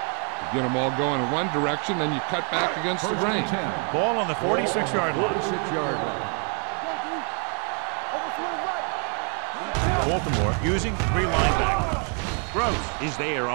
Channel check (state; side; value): quieter; left; 39.6 dB